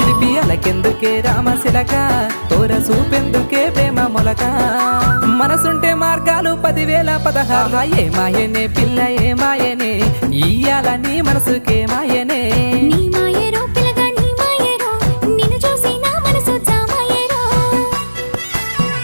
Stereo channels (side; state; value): both; inverted; correlation -1.00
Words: కెందుకే రామశిలక తోర సూపెందుకే ప్రేమ మొలక మనసుంటే మార్గాలు 10,016 ఏ మాయనే పిల్ల ఏ మాయనే ఇయ్యాల నీ మనసుకే మాయనే నీ మాయరో పిల్లగా నీ మాయరో నిన్ను చూసి నా మనసు జామాయరో